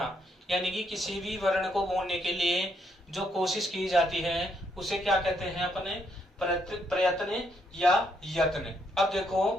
यानी कि किसी भी वर्ण को बोलने के लिए जो कोशिश की जाती है उसे क्या कहते हैं अपने? प्रयत्न या यत्न। अब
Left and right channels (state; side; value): normal; both; correlation 0.74